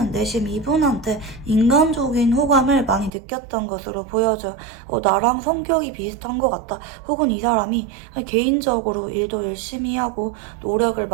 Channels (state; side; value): drops out; left; at 3.1 s